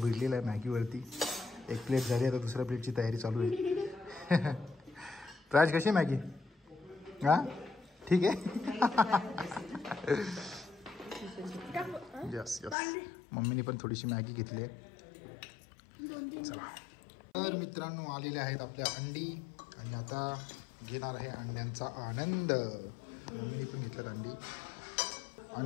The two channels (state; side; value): drops out; right; at 12.8 s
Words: आहे मॅगीवरती. एक प्लेट झाली, आता दुसऱ्या प्लेटची तयारी चालू आहे. प्राज कशी मॅगी? हां ठीक आहे. यस यस, मम्मीने पण थोडीशी मॅगी घेतली आहे. चला तर मित्रांनो, आलेले आहेत आपल्या अंडी आणि आता घेणार आहे अंड्यांचा आनंद. मम्मीने पण घेतलं अंडी,